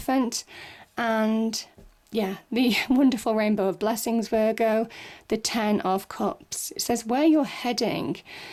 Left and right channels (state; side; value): identical; both; correlation 1.00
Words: and the wonderful Rainbow of Blessings, Virgo, the Ten of Cups. It says where you're heading.